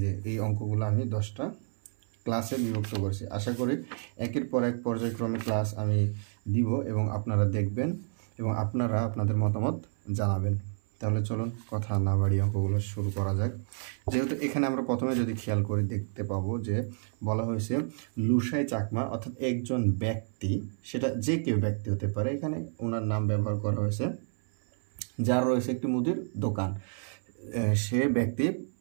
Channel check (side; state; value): left; silent; 58 dB below the other